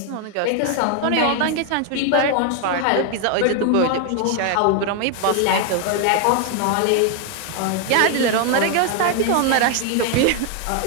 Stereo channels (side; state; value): both; different; correlation 0.01